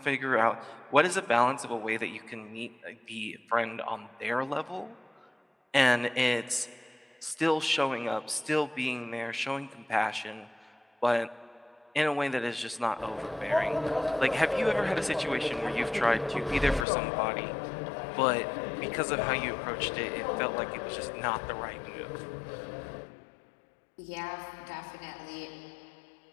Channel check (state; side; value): drops out; right; at 16.9 s